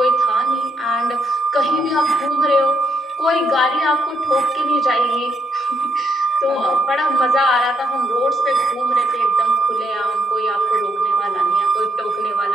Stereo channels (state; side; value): normal; both; correlation 0.77